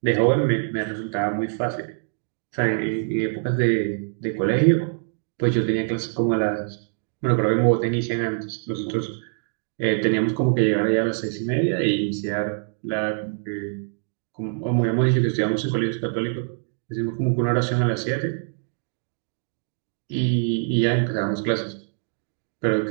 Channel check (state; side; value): silent; left; digital silence